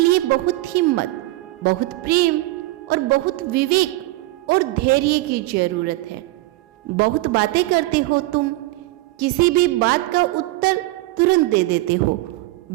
लिए बहुत हिम्मत, बहुत प्रेम और बहुत विवेक और धैर्य की जरूरत है। बहुत बातें करते हो तुम। किसी भी बात का उत्तर तुरंत दे देते हो।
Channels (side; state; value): left; quieter; 19.3 dB